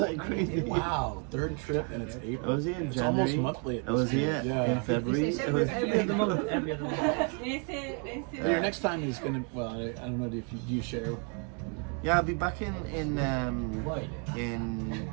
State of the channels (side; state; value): left; quieter; 38.7 dB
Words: crazy. Wow, third trip and it's I April. was here in It's January. almost monthly. I was here in February. It's It was, every other month. Every other month. Your next time is gonna. Well, I don't know. Do you share? yeah, I'll be back in